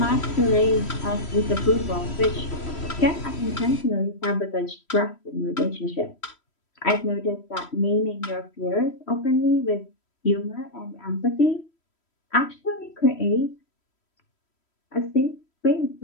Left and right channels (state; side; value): late; right; 3.1 ms